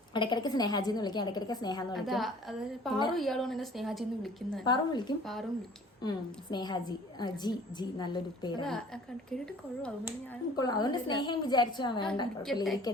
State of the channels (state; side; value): normal; both; correlation 0.50